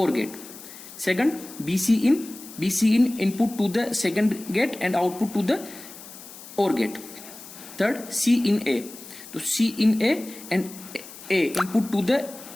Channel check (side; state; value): left; noise; hiss, 16 dB below the sound